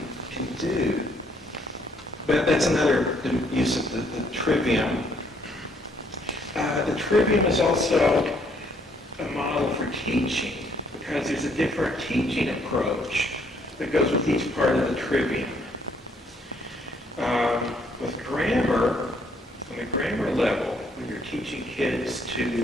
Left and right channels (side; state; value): both; normal; correlation 0.67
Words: can do. But that's another use of the trivium. The trivium is also a model for teaching, because there's a different teaching approach that goes with each part of the trivium. With grammar, on the grammar level, when you're teaching kids